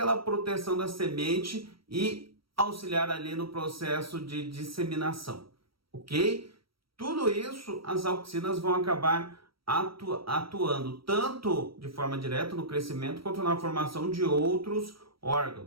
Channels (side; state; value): left; late; 0.75 ms